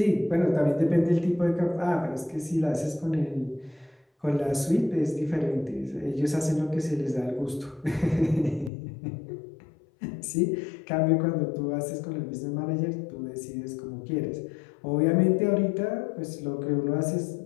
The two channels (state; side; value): drops out; right; at 8.7 s